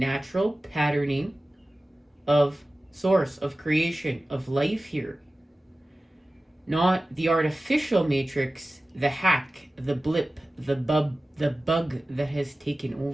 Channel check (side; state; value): both; normal; correlation 0.96